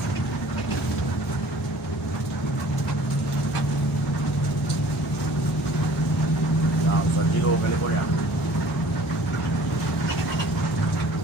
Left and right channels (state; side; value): normal; both; correlation 0.50